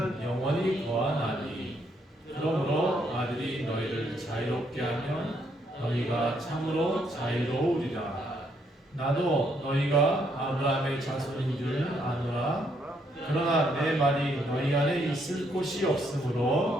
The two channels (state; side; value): normal; both; correlation 0.73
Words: 영원히 거하나니. 그러므로 아들이 너희를 자유롭게 하면 너희가 참으로 자유로우리라. 나도 너희가 아브라함의 자손인 줄 아노라. 그러나 내 말이 너희 안에 있을 곳이